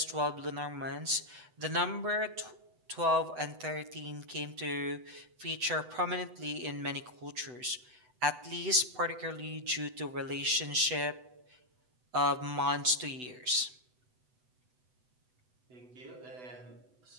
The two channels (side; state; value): left; late; 8.0 ms